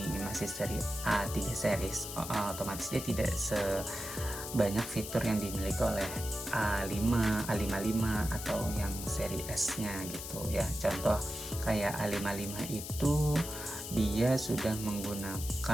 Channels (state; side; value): noise; left; hiss, 8 dB below the sound